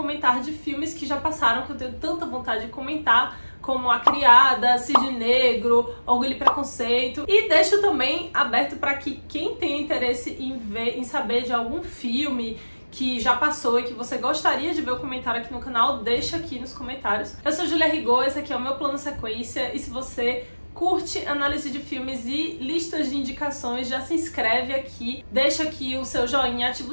de filmes que já passaram, que eu tenho tanta vontade de comentar, como A Criada, Cisne Negro, Orgulho e Preconceito. E deixo também aberto para que quem tem interesse em saber de algum filme que já passou e que você gostaria de ver o comentário aqui no canal, deixa aqui nos comentários. Eu sou Julia Rigaud, esse aqui é o meu plano sequência, e se você curte análise de filmes e listas de indicações, já se inscreve aqui, deixa aqui o seu joinha, ativa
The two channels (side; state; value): both; inverted; correlation -1.00